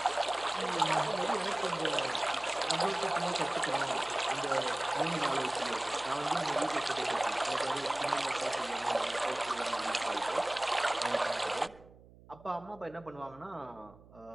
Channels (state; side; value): noise; right; hum, 23 dB below the sound